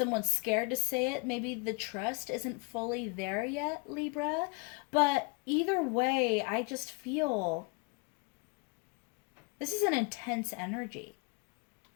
scared to say it. Maybe the trust isn't fully there yet, Libra. But either way, I just feel this is an intense energy.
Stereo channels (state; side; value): quieter; right; 31.0 dB